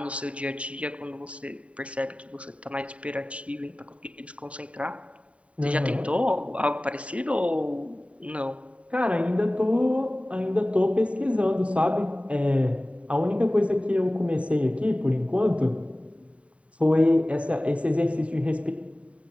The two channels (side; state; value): left; late; 0.064 ms